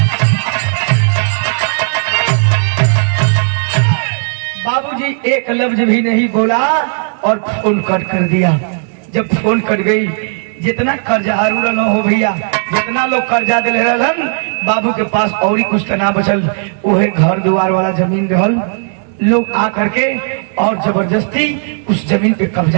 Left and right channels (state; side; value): silent; left; digital silence